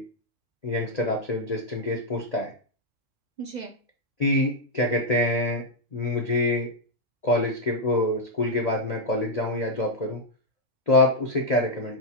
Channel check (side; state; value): both; normal; correlation -0.02